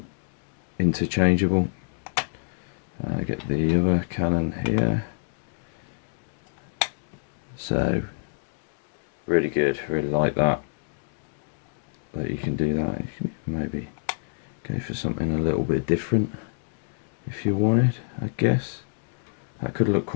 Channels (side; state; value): right; silent; digital silence